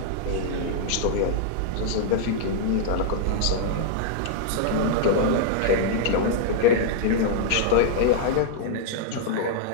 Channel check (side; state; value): both; different; correlation -0.01